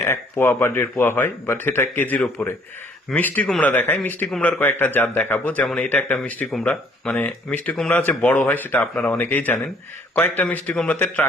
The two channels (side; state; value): both; normal; correlation 0.61